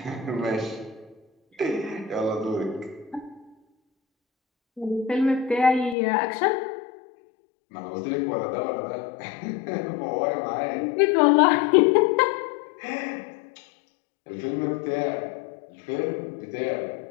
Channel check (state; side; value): drops out; right; at 6.0 s